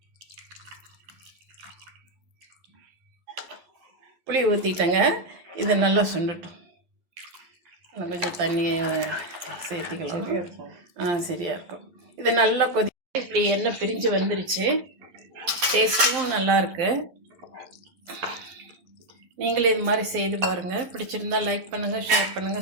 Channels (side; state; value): left; late; 11 ms